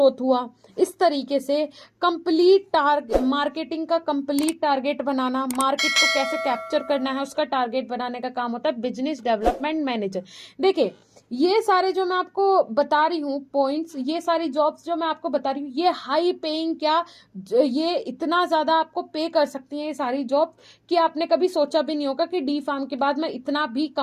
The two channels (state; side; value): identical; both; correlation 1.00